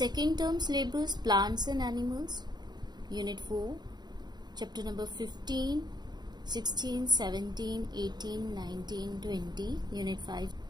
term syllabus plants and animals, unit 4, chapter number 15, 16, 17, 18, 19, 20, Unit 5,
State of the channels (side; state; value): left; late; 0.20 ms